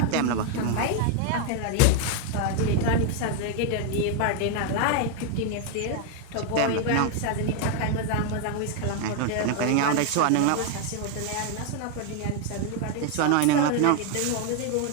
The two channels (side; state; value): both; different; correlation 0.01